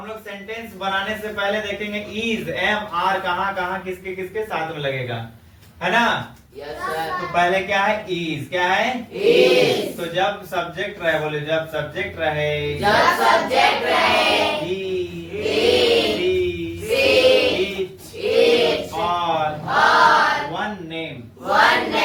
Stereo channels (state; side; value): identical; both; correlation 1.00